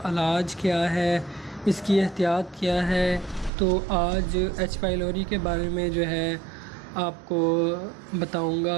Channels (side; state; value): left; drops out; at 3.5 s